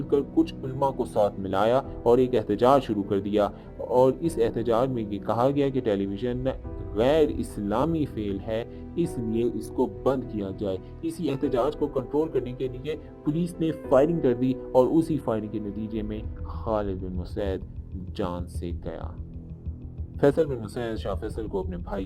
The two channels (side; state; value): both; identical; correlation 1.00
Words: کر کچھ علماء کو ساتھ ملایا اور ایک احتجاج شروع کر دیا، اور اس احتجاج میں یہ کہا گیا کہ ٹیلی ویژن غیر اسلامی فعل ہے، اس لیے اس کو بند کیا جائے۔ اسی احتجاج کو کنٹرول کرنے کے لیے پولیس نے فائرنگ کر دی اور اسی فائرنگ کے نتیجے میں خالد بن مسعود جان سے گیا۔ فیصل بن مسعود شاہ فیصل کو اپنے بھائی